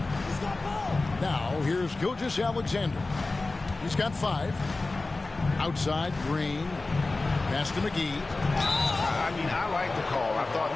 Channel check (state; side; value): quieter; right; 3.3 dB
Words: Now, here's Gilgeous-Alexander. He's got 5. Outside, Green. Pass to McGee. I mean, I like the call. I thought